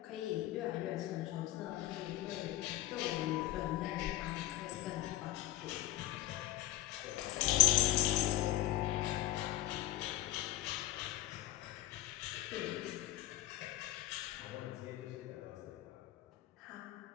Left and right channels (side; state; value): right; quieter; 15.0 dB